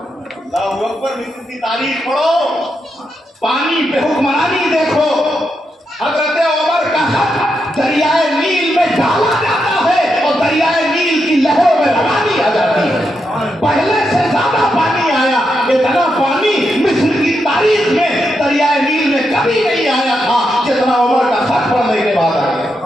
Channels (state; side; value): normal; both; correlation 0.84